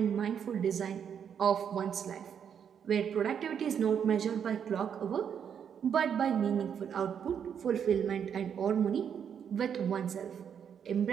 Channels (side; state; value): left; quieter; 7.9 dB